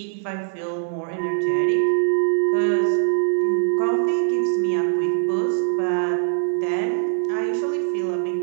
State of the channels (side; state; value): left; silent; digital silence